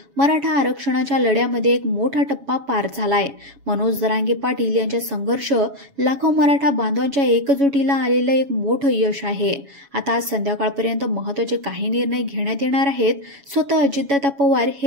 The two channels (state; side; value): late; left; 7.1 ms